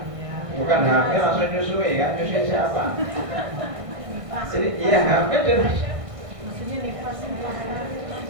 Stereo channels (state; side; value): late; left; 1.6 ms